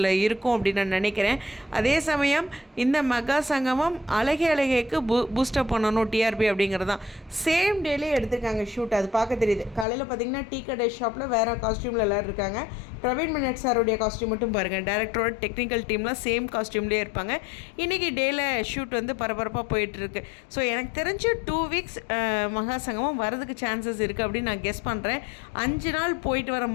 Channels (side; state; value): right; drops out; at 9.9 s